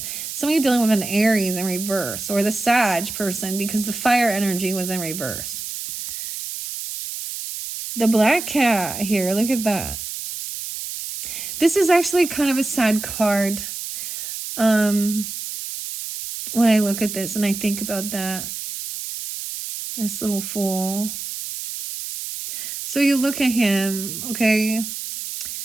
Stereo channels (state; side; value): noise; right; hiss, 7 dB below the sound